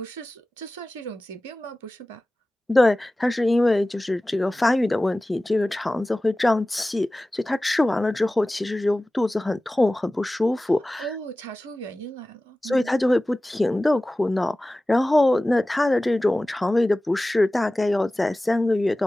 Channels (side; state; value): both; normal; correlation 0.97